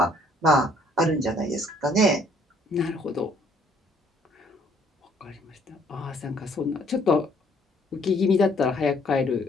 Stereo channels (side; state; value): both; normal; correlation 0.63